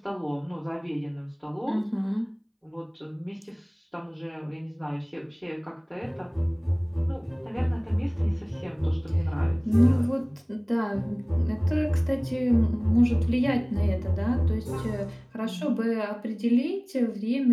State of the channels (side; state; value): both; identical; correlation 1.00